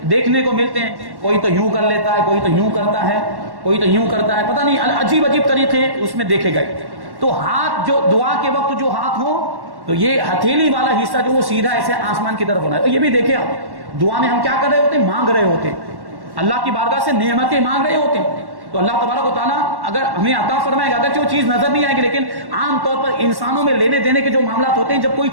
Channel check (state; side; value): late; left; 1.1 ms